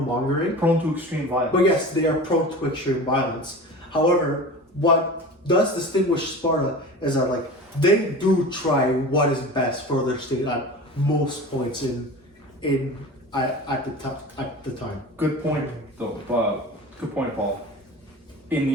Prone to extreme violence. But yes, they are prone to extreme violence. However, what does distinguish Sparta is that like they do try what is best for their state at most points at the time. Good point, though. Good point, Paul. In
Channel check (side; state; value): both; normal; correlation 0.35